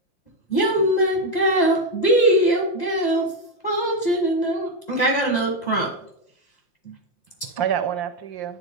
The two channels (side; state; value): right; late; 5.8 ms